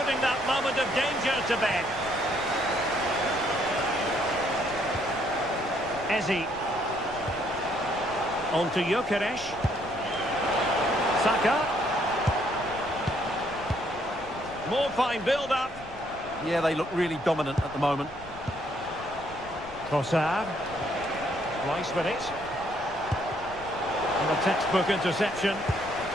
that moment of danger to bed. Ezi. On to Gyökeres. Saka. More fine build-up. Yeah, they look really dominant at the moment. Trossard. Rice with it. And a textbook interception.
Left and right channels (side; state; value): left; noise; rumble, 18 dB below the sound